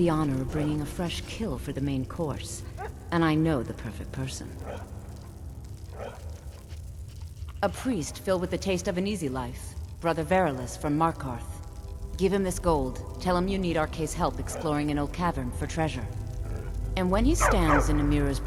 honor of bringing a fresh kill for the main course, and I know the perfect person. A priest filled with the taste of an easy life, Brother Verilus from Markarth. Give him this gold. Tell him you need Arke's help exploring an old cavern for treasure. And when he stands in Amira's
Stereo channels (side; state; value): both; identical; correlation 1.00